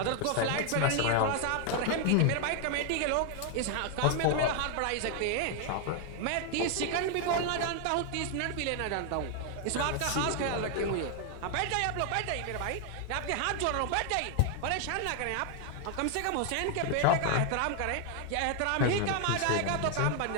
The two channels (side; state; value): both; different; correlation 0.00